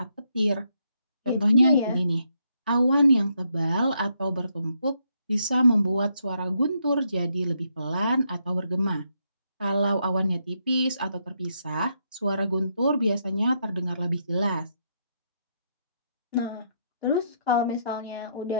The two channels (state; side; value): inverted; both; correlation -0.77